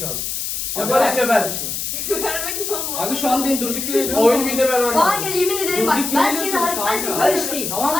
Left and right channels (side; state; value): left; noise; hiss, 3 dB below the sound